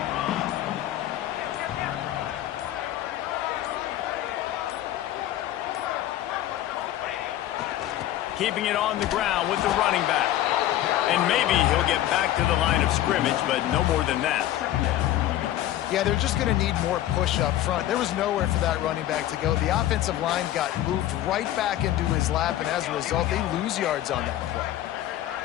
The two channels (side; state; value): right; quieter; 13.3 dB